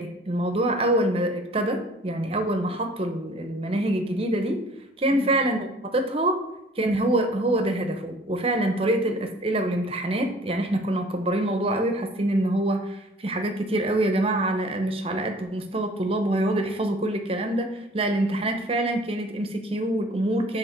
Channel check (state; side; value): normal; both; correlation 0.51